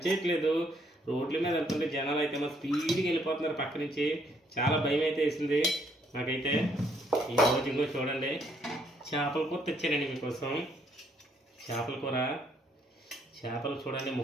రోడ్ల మీద వెళ్తుంటే జనాలు అయితే మా స్పీడ్గా వెళ్ళిపోతున్నారు పక్క నుంచి. చాలా భయం అయితే వేసింది నాకైతే. ఈరోజు ఇంకో చూడండి, చేపల కూర తెచ్చానండి మీకోసం. చేపల కూర, చేపలు చూడండి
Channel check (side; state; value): both; normal; correlation 0.69